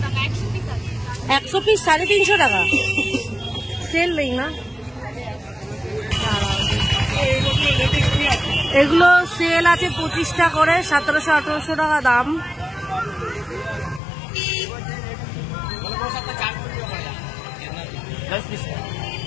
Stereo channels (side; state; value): right; drops out; at 14.0 s